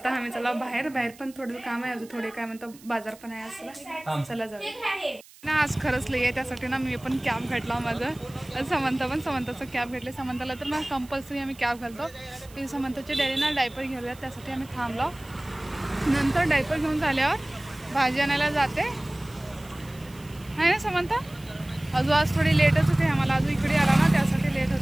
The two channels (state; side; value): noise; right; hiss, 23 dB below the sound